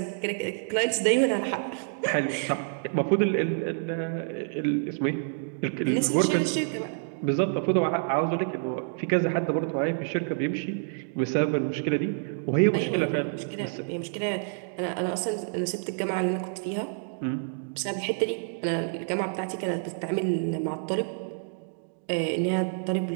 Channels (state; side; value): silent; left; digital silence